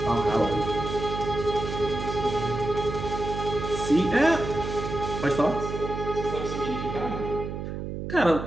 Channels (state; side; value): noise; right; hum, 6 dB below the sound